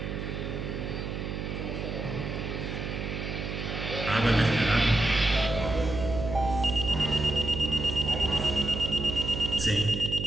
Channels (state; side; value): noise; right; hum, 5 dB below the sound